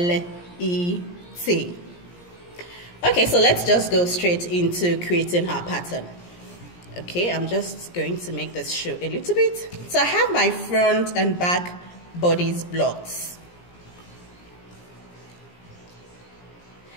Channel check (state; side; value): late; right; 17 ms